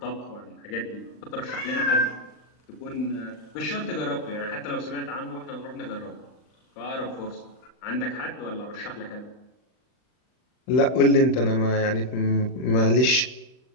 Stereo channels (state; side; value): late; right; 39 ms